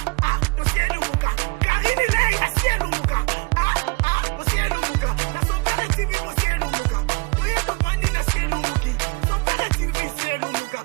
To cielo muka. Karini lei a cielo muka. To cielo muka. Na son père TV mo cielo muka. To yeto bandi na cielo muki. Son père TV cielo muka.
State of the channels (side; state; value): left; quieter; 28.7 dB